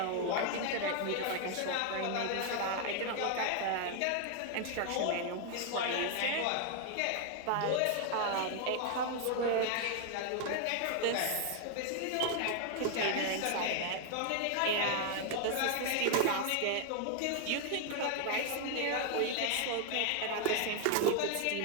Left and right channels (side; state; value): both; different; correlation 0.01